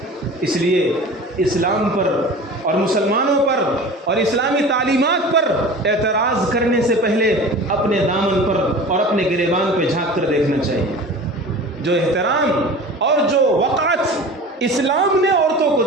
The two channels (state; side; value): normal; both; correlation 0.37